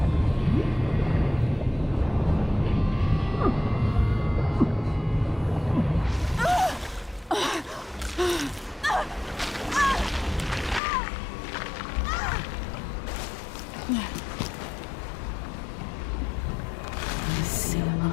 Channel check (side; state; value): right; drops out; at 10.8 s